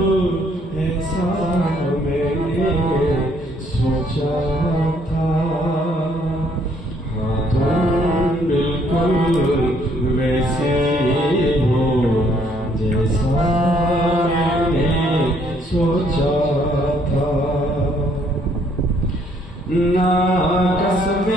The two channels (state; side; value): normal; both; correlation 0.66